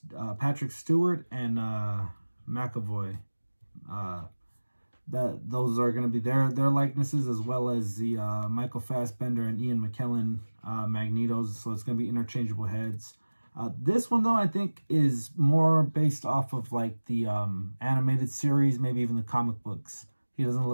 Patrick Stewart and McAvoy. Those are going to be their likenesses, as well as the Michael Fassbender and Ian McKellen Magnetos. So it's going to be interchangeable heads. This one, though, I think is more based off of like the animated series, maybe even the comic books. He doesn't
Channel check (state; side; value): inverted; both; correlation -1.00